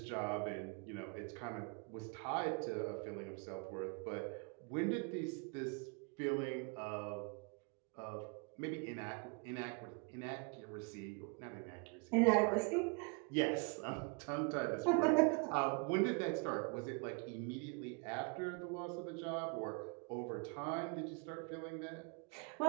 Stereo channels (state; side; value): quieter; left; 33.2 dB